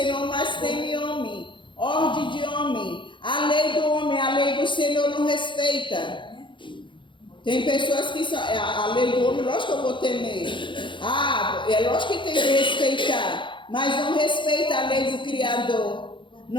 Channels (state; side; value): late; right; 0.23 ms